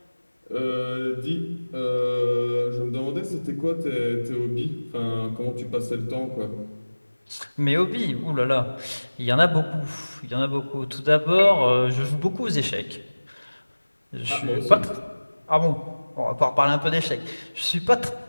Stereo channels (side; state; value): both; inverted; correlation -1.00